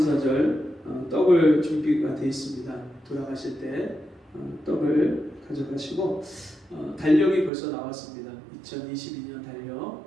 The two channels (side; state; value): left; drops out; at 7.5 s